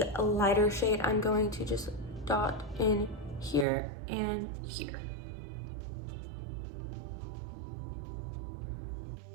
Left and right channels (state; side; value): drops out; left; at 3.7 s